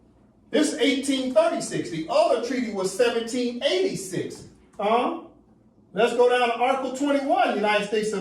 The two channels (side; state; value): both; identical; correlation 1.00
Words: This is 1836. The other treaty was 1786. Let's go down to Article 21, United States of